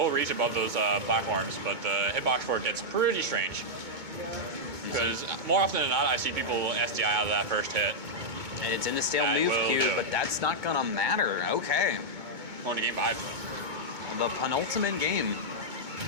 reach above those platforms, but the hitbox for it gets pretty strange. Because more often than not, I see people SDI out of that first hit. And it's in the stale That move will queue, do. but that's not gonna matter. Okay. On to game 5. The penultimate game.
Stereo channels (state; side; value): late; left; 2.2 ms